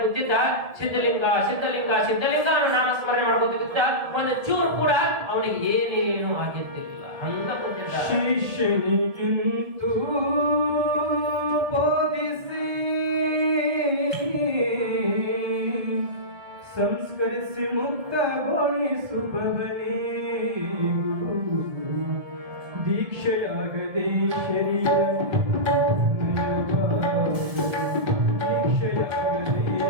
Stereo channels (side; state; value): left; late; 1.7 ms